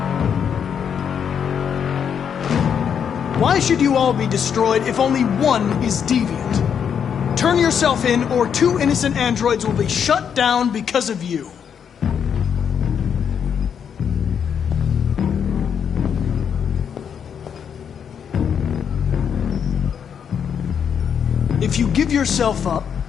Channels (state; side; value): quieter; right; 7.7 dB